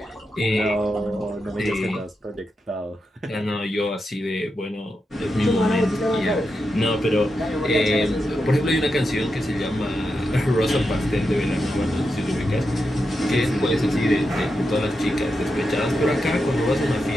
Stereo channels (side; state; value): both; normal; correlation 0.87